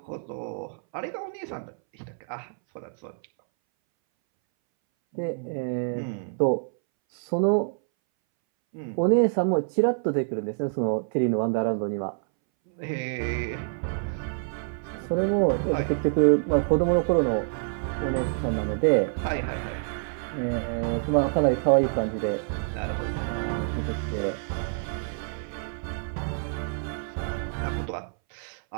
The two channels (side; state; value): left; silent; 60 dB below the other